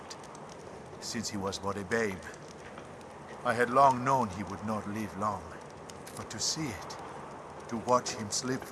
Since he was but a babe. I had long known he would not live long. But to see it, to watch him slip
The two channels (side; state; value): both; identical; correlation 1.00